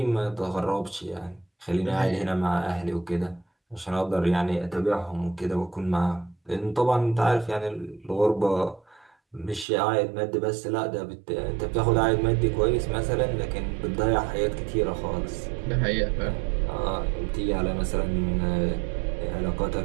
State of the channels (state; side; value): drops out; left; at 9.7 s